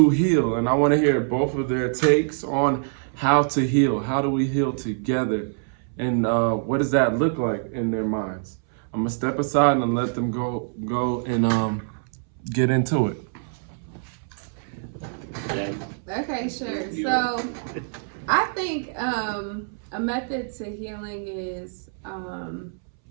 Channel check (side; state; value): left; silent; 62 dB below the other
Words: heal? And I want to hear both of their takes on how to heal. How do we heal together? And what does that look like in their minds? I'm gonna step aside and let them go and get into it. Okay, sure. So I think a method to healing is